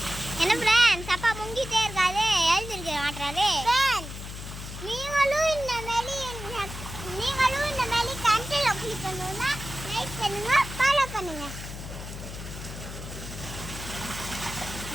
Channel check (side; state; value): left; noise; hum, 10 dB below the sound